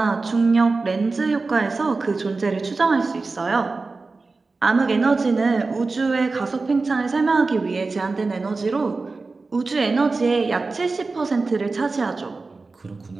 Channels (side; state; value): left; quieter; 3.8 dB